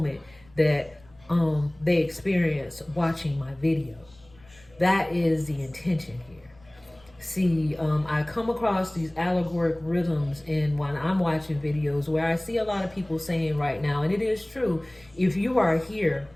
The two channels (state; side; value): noise; left; rumble, 28 dB below the sound